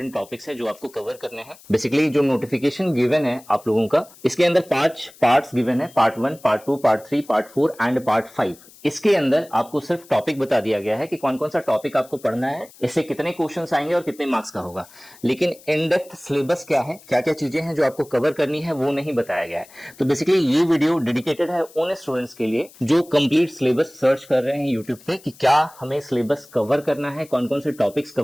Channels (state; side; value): noise; left; hiss, 23 dB below the sound